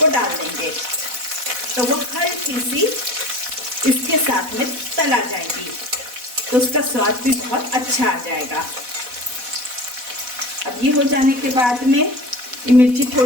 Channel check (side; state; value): left; late; 4.1 ms